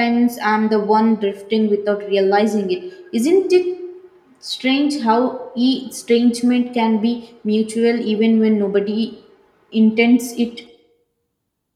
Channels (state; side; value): identical; both; correlation 1.00